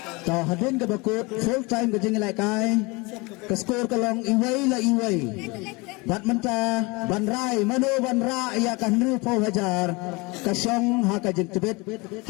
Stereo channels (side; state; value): right; quieter; 26.0 dB